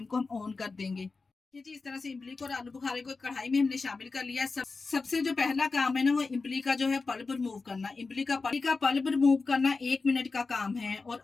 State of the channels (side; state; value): right; quieter; 4.1 dB